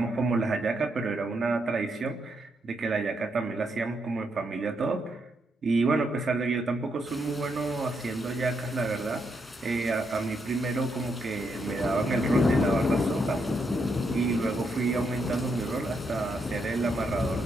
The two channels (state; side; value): normal; both; correlation 0.79